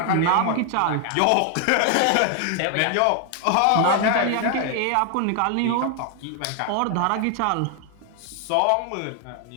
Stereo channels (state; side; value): different; both; correlation 0.00